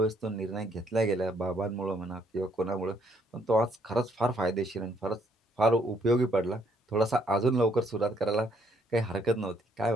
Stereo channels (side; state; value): both; normal; correlation 0.68